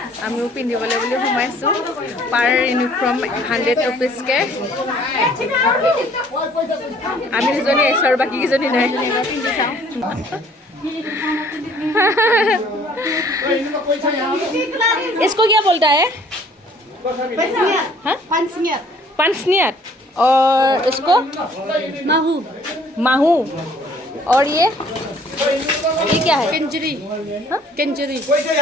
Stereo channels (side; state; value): both; normal; correlation 0.57